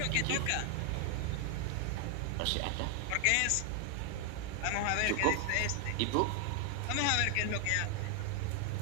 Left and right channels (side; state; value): both; different; correlation 0.00